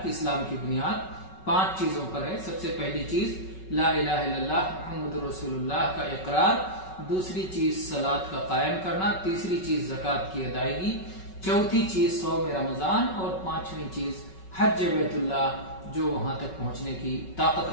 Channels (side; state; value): right; late; 5.3 ms